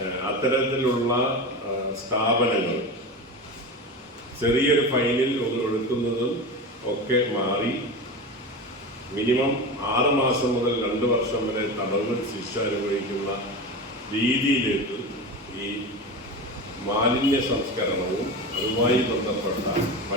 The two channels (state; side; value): normal; both; correlation 0.26